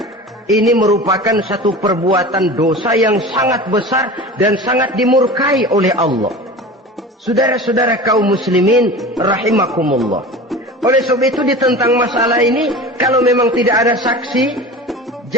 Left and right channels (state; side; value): normal; both; correlation 0.34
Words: Ini merupakan satu perbuatan dosa yang sangat besar dan sangat dimurkai oleh Allah. Saudara-saudara kaum muslimin rahimakumullah, oleh sebab itu ditentang masalah ini, kalau memang tidak ada saksi,